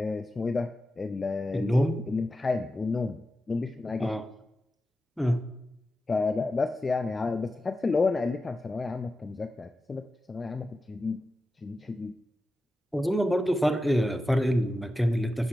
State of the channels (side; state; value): both; normal; correlation 0.92